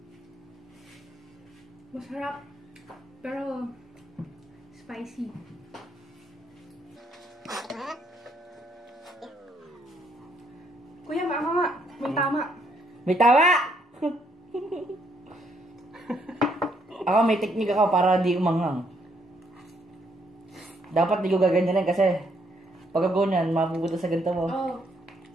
Masarap, pero spicy. Kuya, mama nga. May tama. May tawa! Ako may teknik ako para di umanghang. Dapat di ko gaganyanin kasi pag ganyan, mapupunta sa ganito mo. Oh.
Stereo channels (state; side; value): normal; both; correlation 0.71